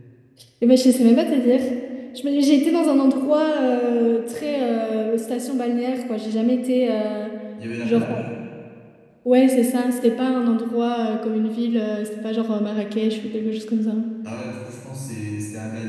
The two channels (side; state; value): both; identical; correlation 1.00